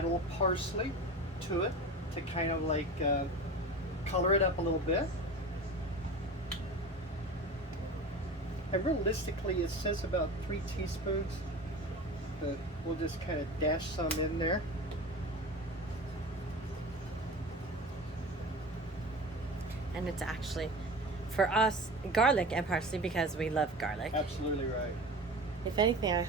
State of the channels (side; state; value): both; normal; correlation 0.32